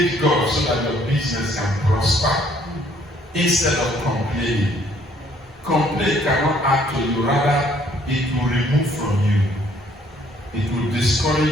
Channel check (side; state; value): both; normal; correlation 0.63